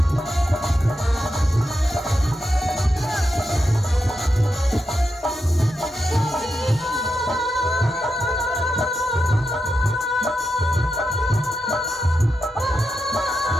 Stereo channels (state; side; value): normal; both; correlation 0.87